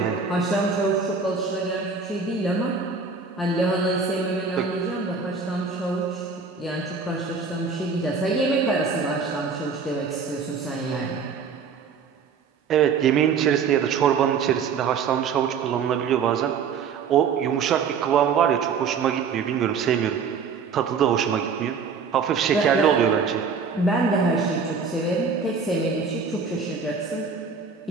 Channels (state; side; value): quieter; left; 5.6 dB